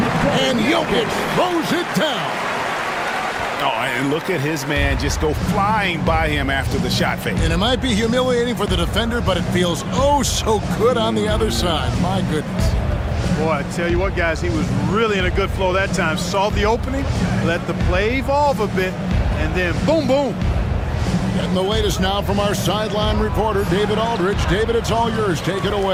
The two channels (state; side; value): identical; both; correlation 1.00